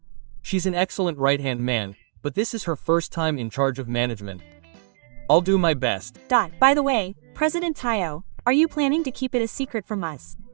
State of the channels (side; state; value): left; silent; digital silence